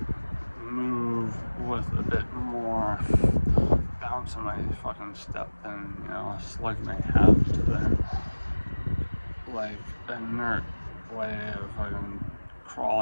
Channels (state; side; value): inverted; both; correlation -1.00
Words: move with a bit more bounce in my fucking step than, you know, a slug may have to their like inert way of fucking